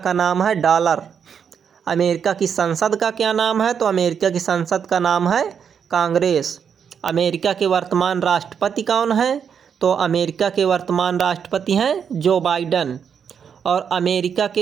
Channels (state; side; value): quieter; left; 7.3 dB